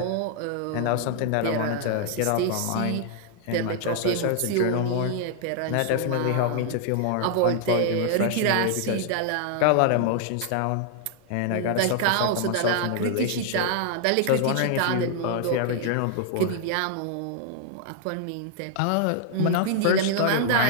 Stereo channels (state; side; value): different; both; correlation 0.00